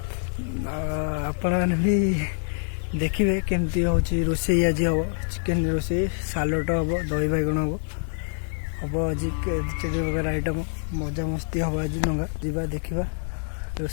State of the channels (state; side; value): silent; right; 61 dB below the other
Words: आपण मैंने भी देखिए केमती हूँ रोषे आज हम चिकेन रोषे सालट हम दही बैगण हम आज चार प्रकार आइटम मजा मस्ती हम आज नंगा जा देखा